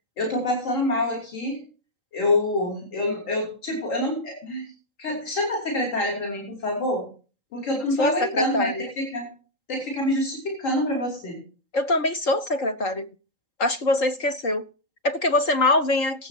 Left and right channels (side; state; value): right; late; 3.8 ms